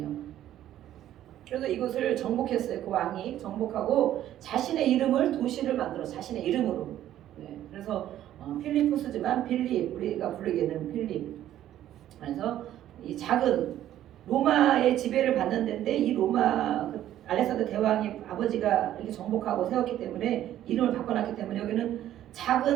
그래서 이곳을 정복했어요. 그 왕이 정복하고 자신의 이름을, 도시를 만들어 자신의 이름으로. 네. 그래서 필리포스지만 빌립, 우리가 부르기에는 필립. 그래서 이 작은 로마의 지배를 받는 데인데, 이 로마 알렉산더 대왕이 아버지가 이렇게 정복하고 세웠기 때문에 이름을 바꿔놨기 때문에 여기는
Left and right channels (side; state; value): left; quieter; 12.3 dB